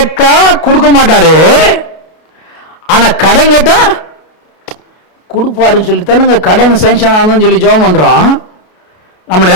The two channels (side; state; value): right; late; 32 ms